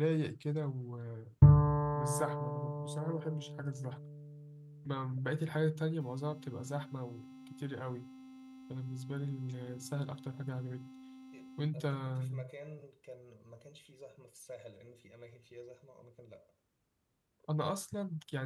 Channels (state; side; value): identical; both; correlation 1.00